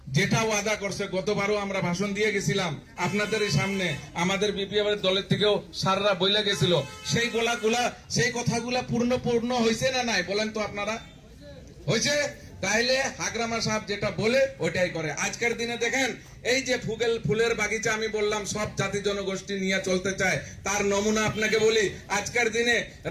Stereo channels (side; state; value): both; identical; correlation 1.00